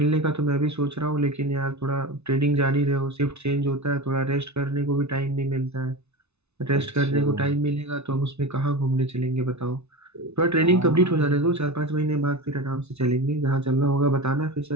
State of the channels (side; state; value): left; late; 0.81 ms